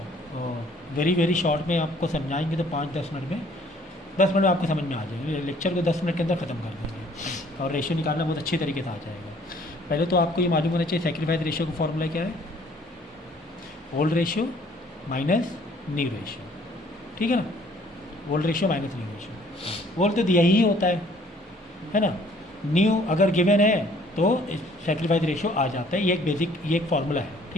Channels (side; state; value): both; normal; correlation 0.58